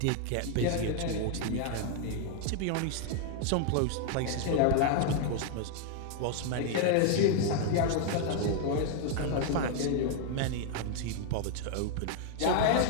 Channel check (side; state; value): both; different; correlation 0.00